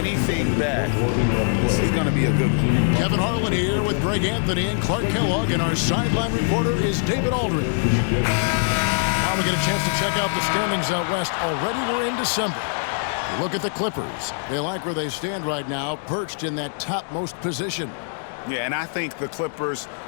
back. This is going to be a good one. Kevin Harlan here with Greg Anthony and Clark Kellogg, and our sideline reporter is David Aldridge. Now we get a chance to check out the standings out west. Already we're in December. Look at the Clippers. They like where they stand right now, perched in that topmost position. Yeah, and I think the Clippers,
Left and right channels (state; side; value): silent; right; digital silence